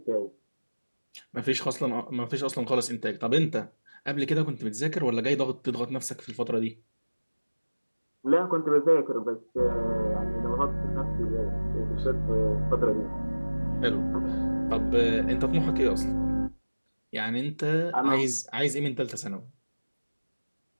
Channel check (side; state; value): both; inverted; correlation -1.00